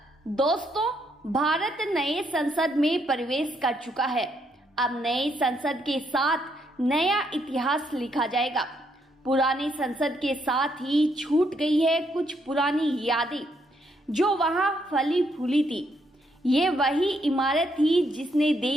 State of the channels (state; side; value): normal; both; correlation 0.75